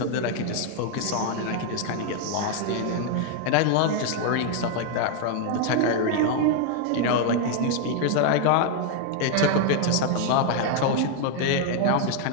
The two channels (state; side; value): different; both; correlation 0.00